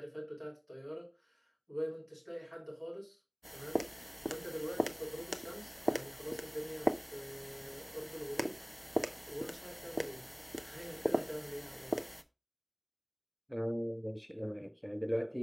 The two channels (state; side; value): identical; both; correlation 1.00